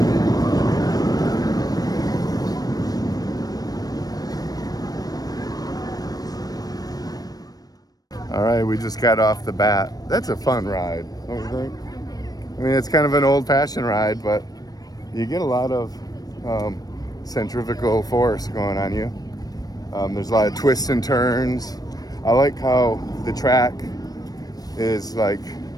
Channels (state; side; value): late; right; 0.18 ms